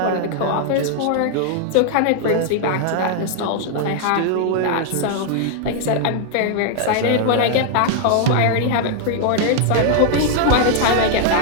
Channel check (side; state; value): both; different; correlation 0.00